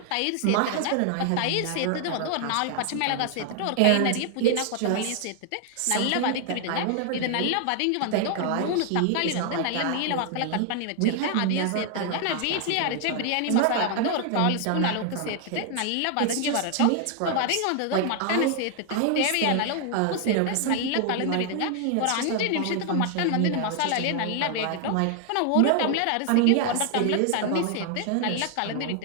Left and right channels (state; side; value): different; both; correlation 0.00